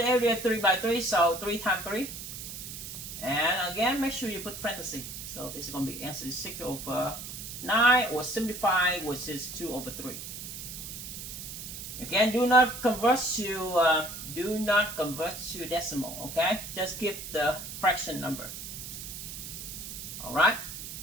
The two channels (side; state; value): right; noise; hiss, 9 dB below the sound